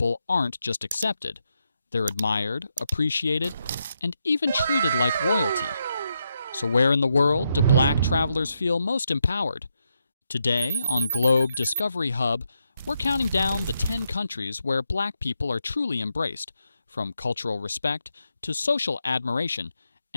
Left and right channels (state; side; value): inverted; both; correlation -0.82